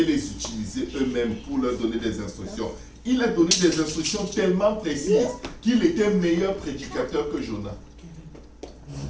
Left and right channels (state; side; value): identical; both; correlation 1.00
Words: les utiliser eux-mêmes pour leur donner des instructions. Il a donné des instructions tellement précises qu'il était meilleur prédicateur que Jonas.